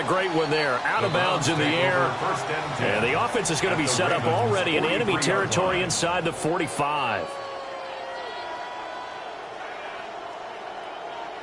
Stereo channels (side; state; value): both; identical; correlation 1.00